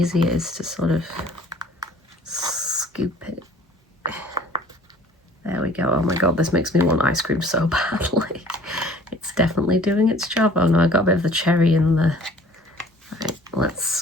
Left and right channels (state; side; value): normal; both; correlation 0.51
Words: it is to sort of scoop it. There we go. Oh my god, this makes me want ice cream so badly. It's definitely doing its job. Oh no, I got a bit of the cherry in the... Right, let's